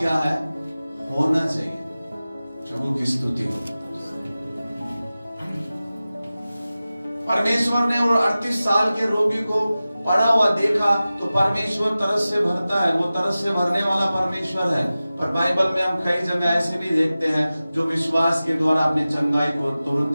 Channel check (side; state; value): both; inverted; correlation -0.96